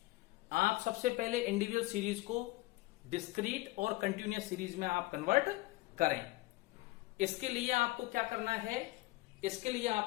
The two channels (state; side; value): quieter; right; 20.3 dB